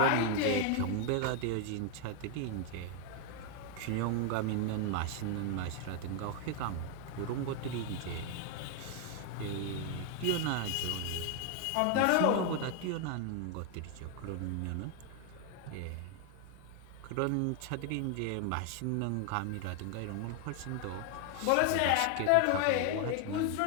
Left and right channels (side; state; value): both; different; correlation 0.00